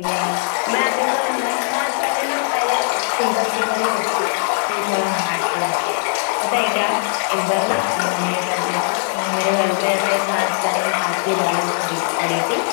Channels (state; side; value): silent; right; digital silence